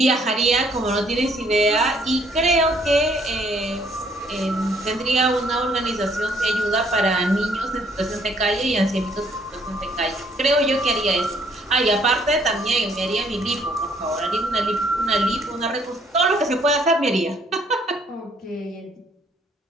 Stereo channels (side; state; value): both; normal; correlation 0.65